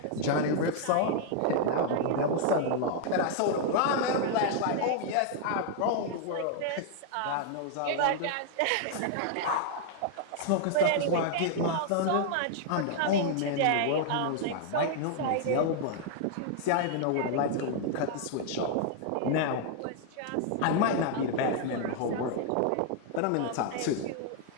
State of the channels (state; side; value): different; both; correlation 0.00